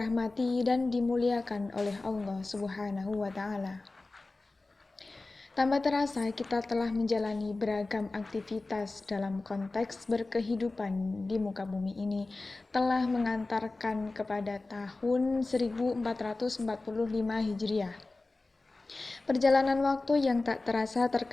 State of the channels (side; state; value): right; quieter; 3.3 dB